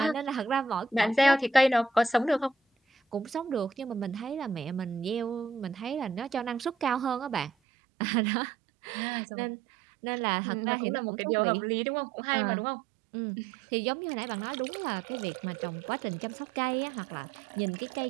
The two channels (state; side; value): drops out; left; at 7.5 s